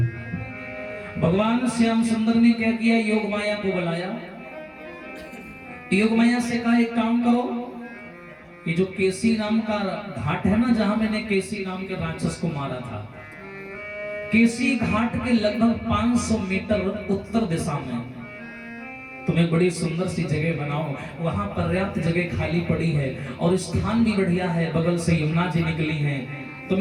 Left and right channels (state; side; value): identical; both; correlation 1.00